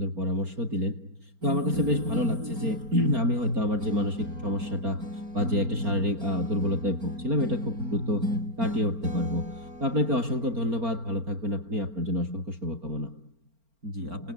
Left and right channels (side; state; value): left; late; 4.4 ms